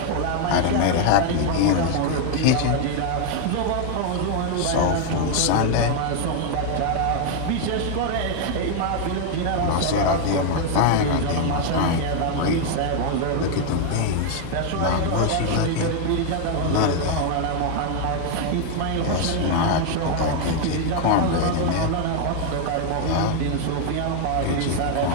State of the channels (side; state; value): both; different; correlation 0.00